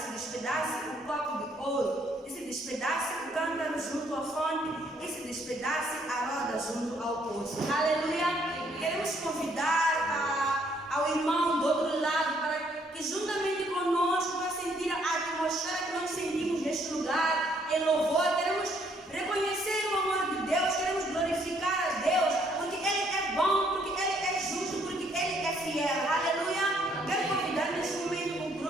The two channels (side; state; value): both; normal; correlation 0.67